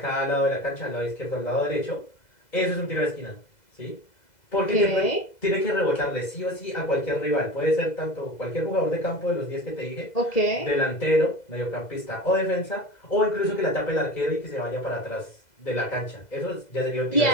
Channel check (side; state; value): right; late; 2.0 ms